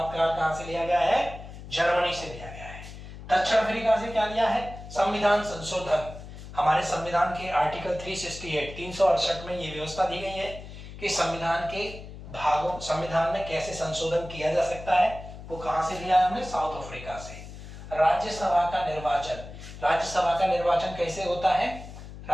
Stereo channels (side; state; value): left; noise; hum, 13 dB below the sound